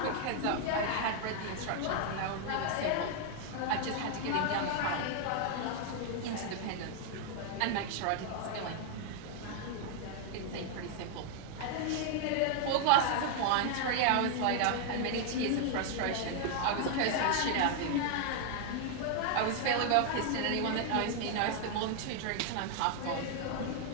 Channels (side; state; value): both; different; correlation 0.00